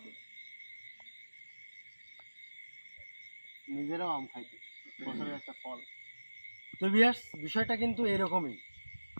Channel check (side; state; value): both; inverted; correlation -1.00